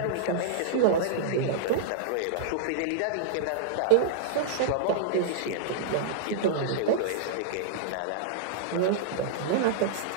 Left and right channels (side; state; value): both; different; correlation -0.01